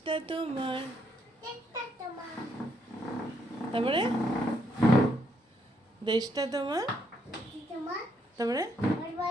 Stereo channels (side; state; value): both; normal; correlation 0.74